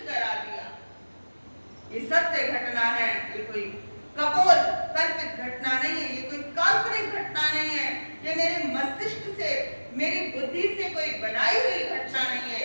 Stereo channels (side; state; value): both; inverted; correlation -1.00